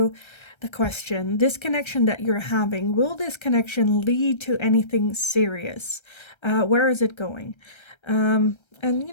the question, this connection that you're having, will this connection lead to anything serious? Where is it going? And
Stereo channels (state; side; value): late; right; 1.3 ms